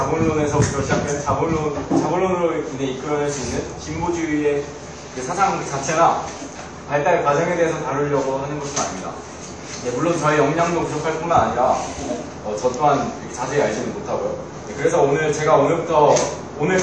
시작된 자본론으로 인해 이끌어낼 수 있는 진보주의의 그 사상 자체나 발달 과정에 대해서 다루려고 하는 것은 아닙니다. 네, 물론 저의 역량도 부족할 뿐만 아니라 저 또한 자세히 알지는 못하고요. 네, 그래서 제가 오늘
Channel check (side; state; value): both; identical; correlation 1.00